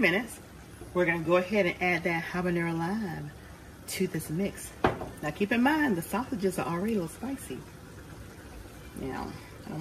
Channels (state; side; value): identical; both; correlation 1.00